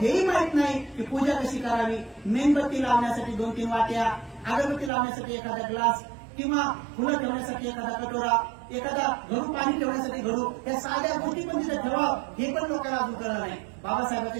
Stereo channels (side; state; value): left; drops out; at 4.9 s